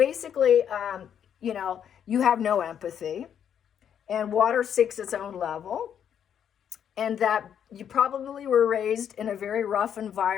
you have no empathy. And water seeks its own level. And that you probably were raised in a very rough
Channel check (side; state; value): right; quieter; 8.8 dB